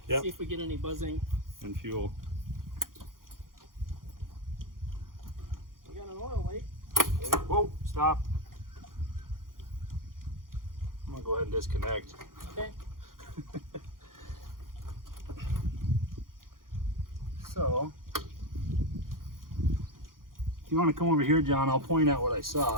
Yep. See if we get any buzzing. And fuel. We got an oil leak. Okay. Whoa, stop. I'm gonna go ahead and disconnect. Okay. So, if you want to come over here, John, I'll point out what I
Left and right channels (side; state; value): left; late; 0.91 ms